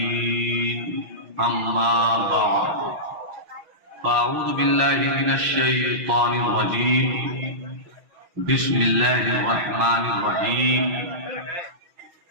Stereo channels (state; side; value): late; left; 6.1 ms